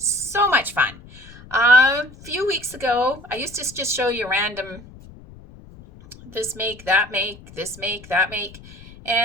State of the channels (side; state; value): left; noise; rumble, 20 dB below the sound